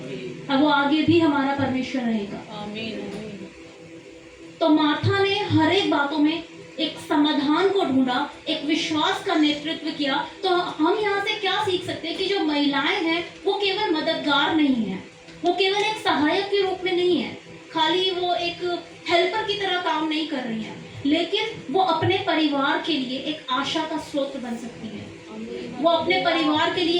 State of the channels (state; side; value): identical; both; correlation 1.00